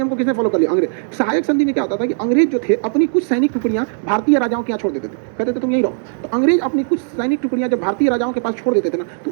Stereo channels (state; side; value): silent; left; digital silence